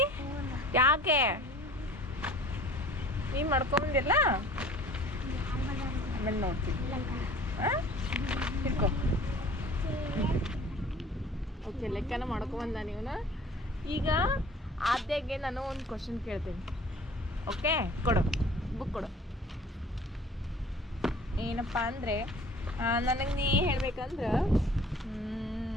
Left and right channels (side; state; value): both; normal; correlation 0.49